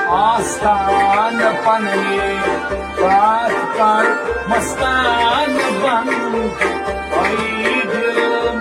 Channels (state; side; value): identical; both; correlation 1.00